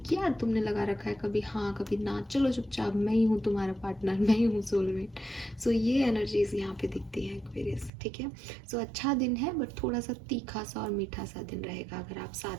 क्या तुमने लगा रखा है, कभी हाँ कभी ना, चलो चुपचाप, मैं ही हूँ तुम्हारा पार्टनर, मैं ही हूँ सोलमेट। सो ये एनर्जीज यहाँ पे दिखती है एक्वेरियस, ठीक है। सो अच्छा दिन है, बट थोड़ा सा तीखा सा और मीठा सा दिन रहेगा अगर आप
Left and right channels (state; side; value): drops out; left; at 7.9 s